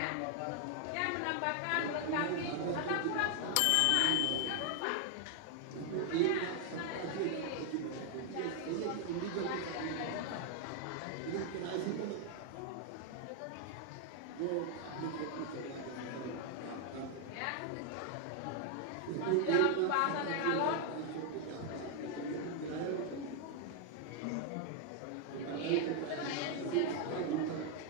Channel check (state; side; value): different; both; correlation 0.00